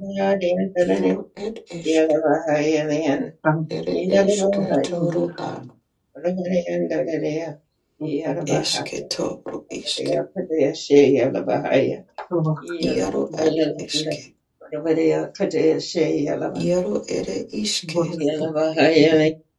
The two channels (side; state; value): both; identical; correlation 1.00